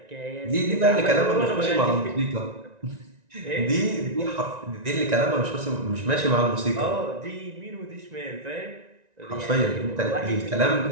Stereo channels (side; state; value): left; late; 1.9 ms